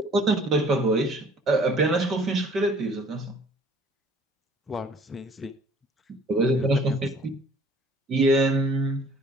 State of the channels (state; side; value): normal; both; correlation 0.54